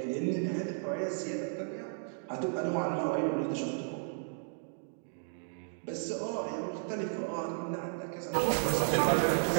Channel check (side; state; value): left; silent; digital silence